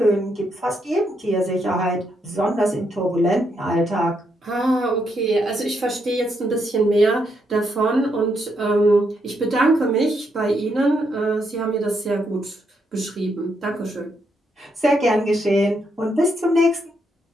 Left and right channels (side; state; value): both; normal; correlation 0.78